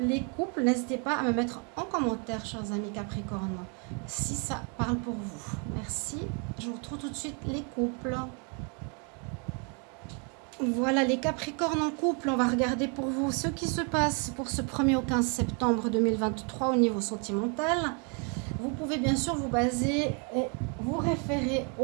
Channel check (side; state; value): left; quieter; 36.9 dB